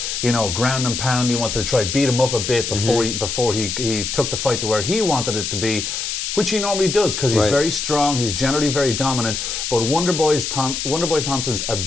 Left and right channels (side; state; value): left; noise; hiss, 3 dB below the sound